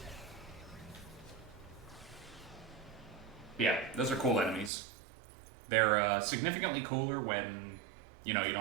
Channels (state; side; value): drops out; left; at 4.7 s